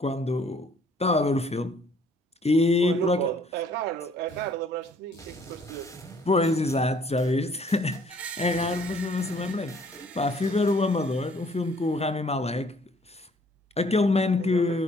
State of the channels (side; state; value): both; normal; correlation 0.60